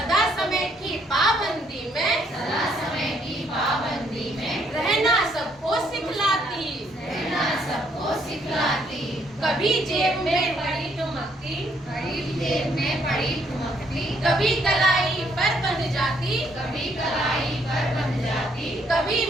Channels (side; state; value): both; normal; correlation 0.69